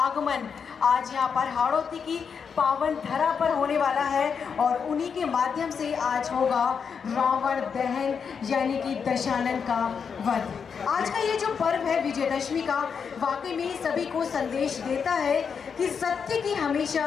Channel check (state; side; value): quieter; right; 6.4 dB